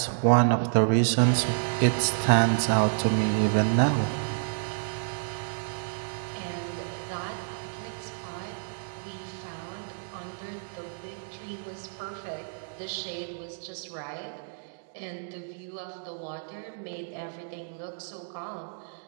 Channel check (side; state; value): left; silent; digital silence